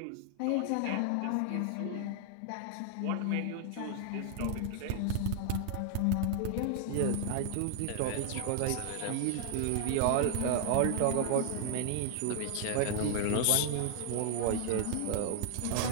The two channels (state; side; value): different; both; correlation 0.00